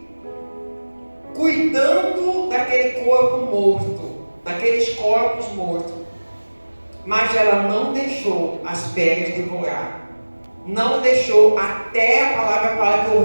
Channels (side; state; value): both; inverted; correlation -1.00